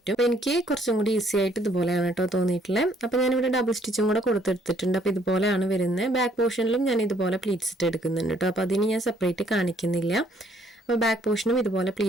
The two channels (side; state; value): both; normal; correlation 0.65